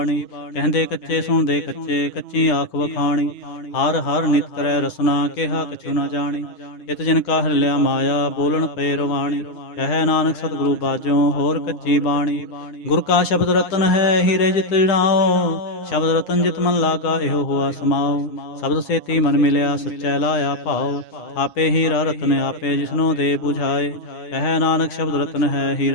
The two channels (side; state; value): right; late; 9.7 ms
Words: ਕਹਿੰਦੇ ਕੱਚੇ ਸੁਣਦੇ ਕੱਚੇ, ਕੱਚੀ ਆਖ ਵਖਾਣੀ। ਹਰ ਹਰ ਨਿਤ ਕਰੈ ਰਸਨਾ, ਕਿਹਾ ਕਛੁ ਨਾ ਜਾਣੀ। ਇਤ ਜਿਨ ਕਾ ਹਿਰਲਿਆ ਮਾਇਆ, ਬੋਲਣ ਪਏ ਰਵਾਣੀ। ਕਹਿ ਨਾਨਕ ਸਤਿਗੁਰੂ ਬਾਝੋਂ, ਹੋਰ ਕੱਚੀ ਬਾਣੀ। ਗੁਰ ਕਾ ਸ਼ਬਦ ਰਤਨ ਹੈ, ਹੀਰੇ ਜਿਤ ਜੜਾਓ। ਸ਼ਬਦ ਰਤਨ ਜਿਤ ਮਨ ਲਾਗਾ, ਇਹੋ ਹੋਆ ਸਮਾਓ। ਸ਼ਬਦ ਸੇਤੀ ਮਨ ਮਿਲਿਆ, ਸੱਚੈ ਲਾਇਆ ਭਾਉ। ਆਪੇ ਹੀਰਾ ਰਤਨ ਆਪੇ, ਜਿਸਨੋ ਦੇ 부ਝਾਏ। ਕਹਿ ਨਾਨਕ ਸ਼ਬਦ ਰਤਨ ਹੈ,